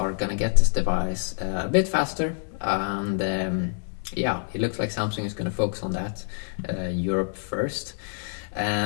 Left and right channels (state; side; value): silent; right; 61 dB below the other